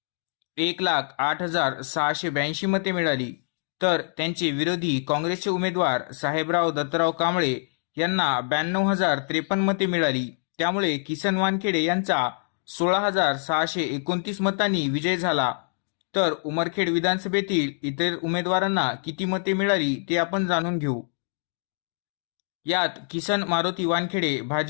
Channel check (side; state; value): right; silent; digital silence